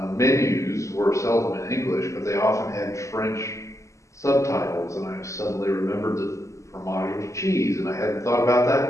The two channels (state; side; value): late; right; 0.15 ms